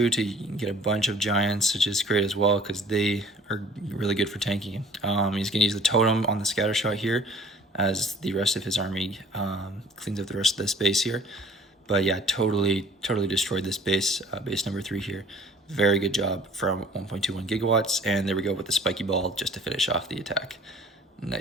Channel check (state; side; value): normal; both; correlation 0.51